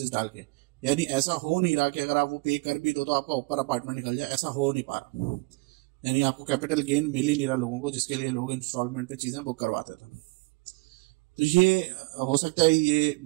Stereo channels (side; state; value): left; quieter; 27.4 dB